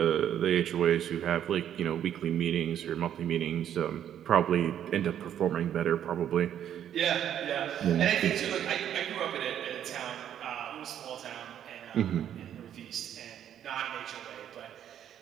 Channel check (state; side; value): quieter; left; 10.1 dB